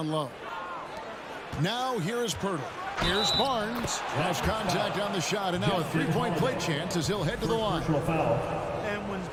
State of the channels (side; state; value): both; identical; correlation 1.00